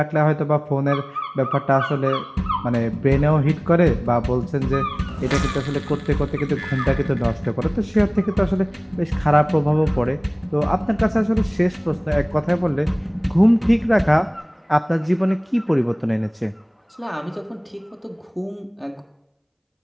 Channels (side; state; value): both; identical; correlation 1.00